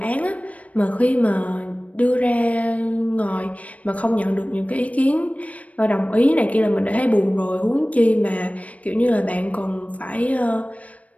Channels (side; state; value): right; late; 0.067 ms